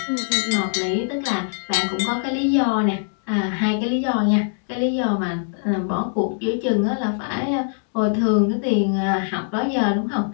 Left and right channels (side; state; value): right; silent; digital silence